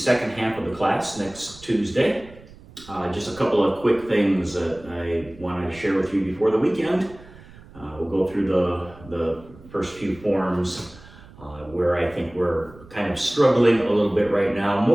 half of the class next Tuesday. Just a couple of quick things that I want to share with you before the weekend. We'll go through the first few forms where I think we're kind of struggling a little bit right now.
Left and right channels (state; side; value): noise; right; rumble, 21 dB below the sound